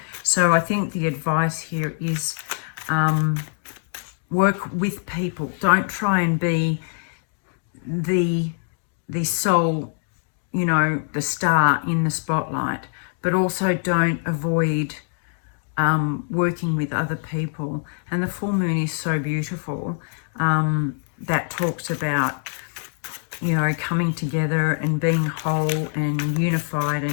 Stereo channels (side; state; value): right; silent; digital silence